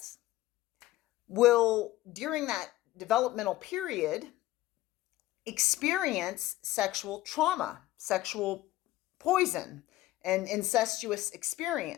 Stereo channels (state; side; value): quieter; right; 16.4 dB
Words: will, during that developmental period, experience sexual trauma, sexual poison, an incestuous